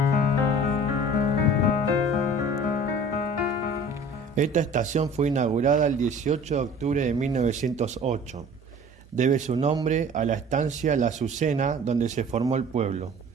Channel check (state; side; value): normal; both; correlation 0.46